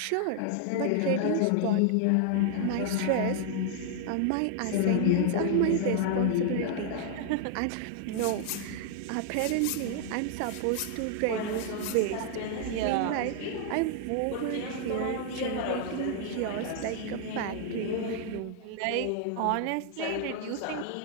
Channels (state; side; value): different; both; correlation 0.00